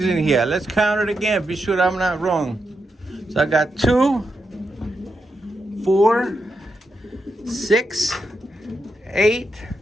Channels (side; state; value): both; normal; correlation 0.85